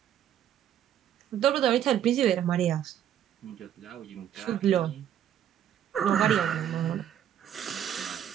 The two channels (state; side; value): quieter; left; 10.3 dB